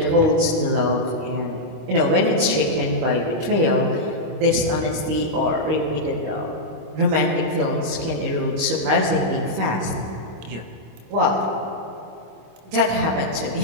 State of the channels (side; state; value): left; late; 25 ms